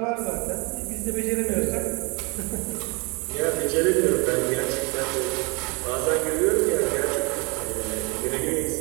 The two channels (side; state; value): left; quieter; 30.6 dB